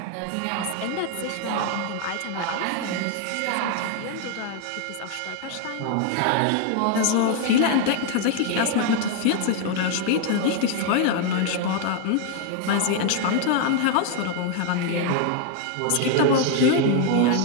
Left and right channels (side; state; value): both; different; correlation 0.00